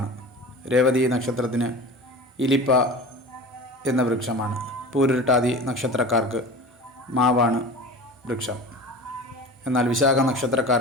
രേവതി നക്ഷത്രത്തിന് ഇലിപ്പ എന്ന വൃക്ഷമാണ്. പൂരുരുട്ടാതി നക്ഷത്രക്കാർക്ക് മാവാണ് വൃക്ഷം. എന്നാൽ വിശാഖ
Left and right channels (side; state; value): both; normal; correlation 0.35